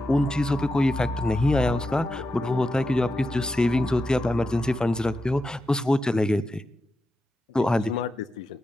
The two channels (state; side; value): normal; both; correlation 0.89